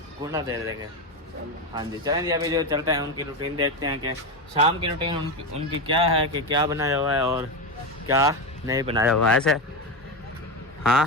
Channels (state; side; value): normal; both; correlation 0.15